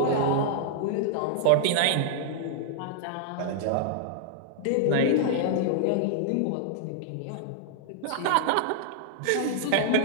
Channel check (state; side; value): different; both; correlation -0.01